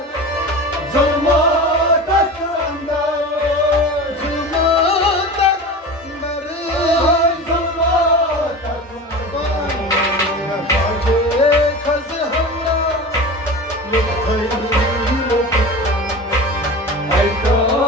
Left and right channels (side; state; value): both; normal; correlation 0.31